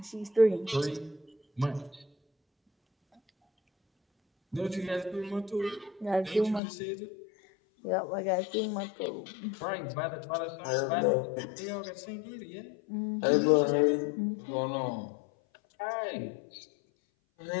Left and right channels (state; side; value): drops out; right; at 6.6 s